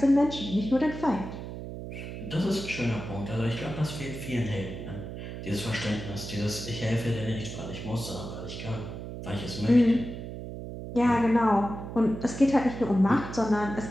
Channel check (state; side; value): noise; right; hum, 9 dB below the sound